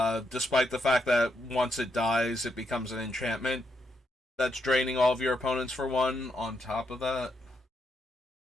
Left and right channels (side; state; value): both; normal; correlation 0.80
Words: the fact that once it dies, it becomes an enchantment that's draining all of your opponents for 1 on top of that.